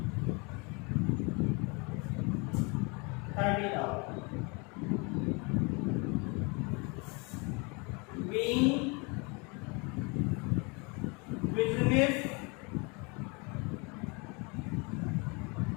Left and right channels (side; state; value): right; quieter; 30.6 dB